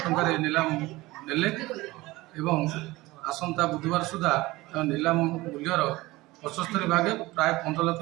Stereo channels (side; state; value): left; quieter; 19.9 dB